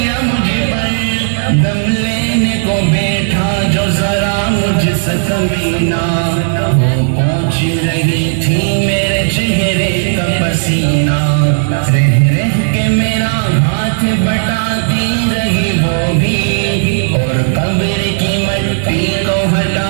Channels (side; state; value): left; silent; digital silence